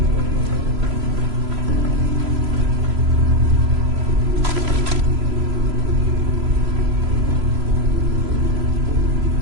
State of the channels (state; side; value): late; left; 3.0 ms